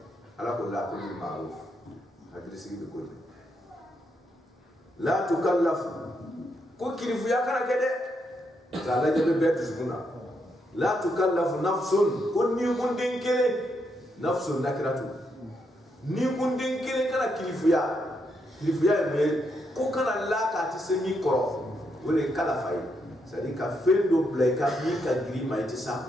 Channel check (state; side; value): normal; both; correlation 0.79